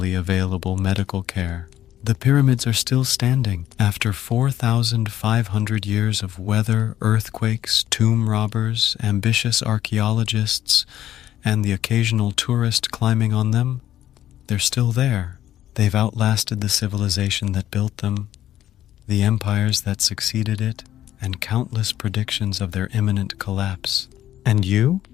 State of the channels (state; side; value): quieter; right; 12.3 dB